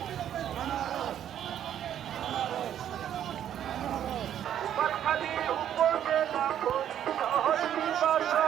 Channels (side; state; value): left; quieter; 10.3 dB